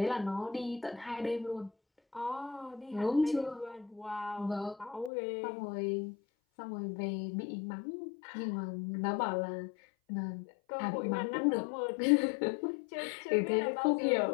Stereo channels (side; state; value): right; drops out; at 5.1 s